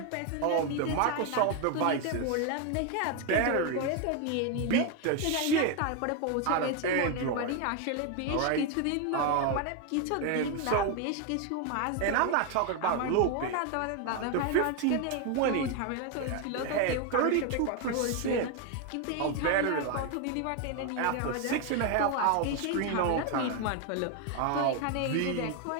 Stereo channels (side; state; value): both; different; correlation 0.01